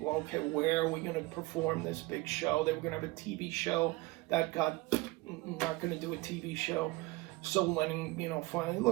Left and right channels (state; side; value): quieter; left; 21.7 dB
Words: okay, where are we going to perform this big show? They were going to have a TV show. That got not going to do a TV show. So Lennon, you know, finally,